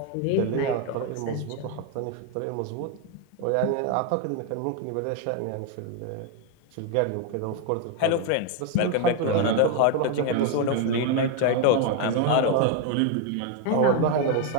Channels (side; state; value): both; different; correlation 0.01